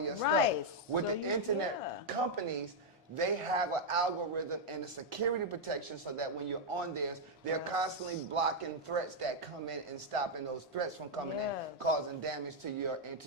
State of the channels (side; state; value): both; normal; correlation -0.02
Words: stuff. With the internet companies, they have an algorithm and a security protection so that when you're on theirs, they're constantly blocking threats that come in and stopping those threats from coming in, causing damage to your